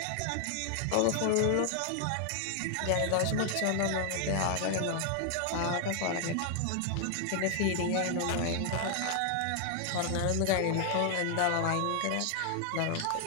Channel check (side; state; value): both; different; correlation 0.00